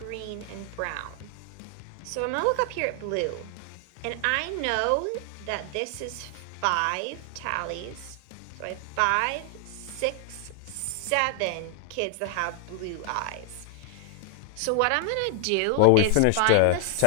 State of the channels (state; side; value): different; both; correlation 0.00